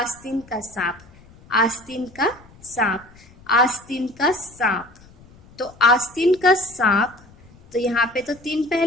का सांप। तो आस्तीन का सांप, तो यहाँ पे तो 3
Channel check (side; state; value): left; noise; rumble, 25 dB below the sound